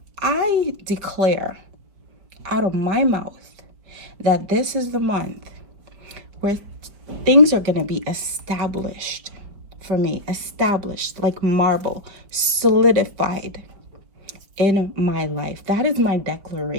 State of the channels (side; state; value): left; late; 4.9 ms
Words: I declare out of my mouth that this is the month where things are going to be established for me, established like marble, solidified in my life. That is my